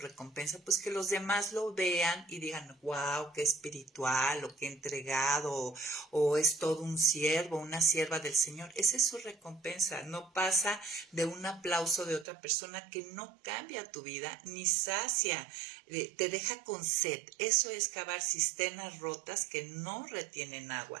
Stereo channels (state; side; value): drops out; left; at 12.2 s